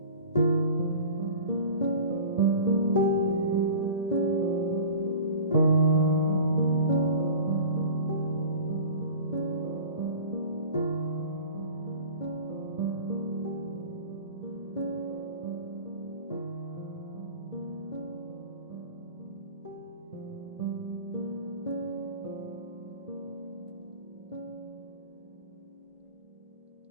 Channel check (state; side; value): inverted; both; correlation -0.39